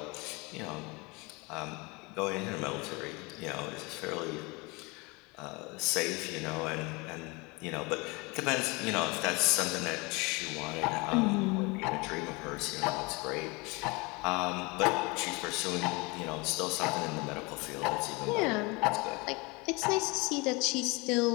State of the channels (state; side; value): quieter; right; 26.7 dB